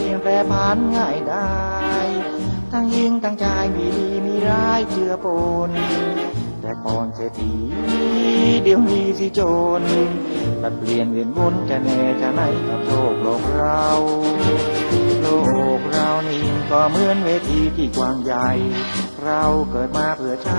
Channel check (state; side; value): inverted; both; correlation -1.00